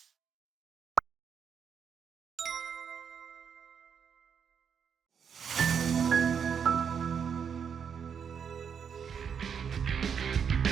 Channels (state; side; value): quieter; left; 7.2 dB